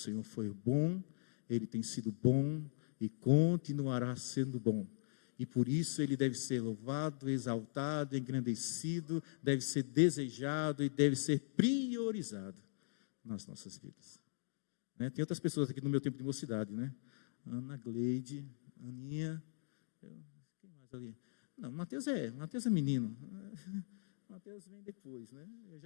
foi bom, Ele tem sido bom e continuará sendo bom. E por isso Ele deve ser louvado, exaltado, engrandecido, deve ser desejado e deve ser priorizado nas nossas vidas. né? Tem outras pessoas aqui no meu tempo de mocidade, né? Ana, Gleide, Aninha, quem mais ali? Não, Mateus é menino. Mateus vem depois, né? Eu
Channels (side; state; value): right; silent; digital silence